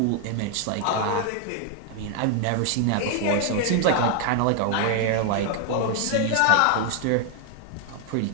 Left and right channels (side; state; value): both; different; correlation 0.00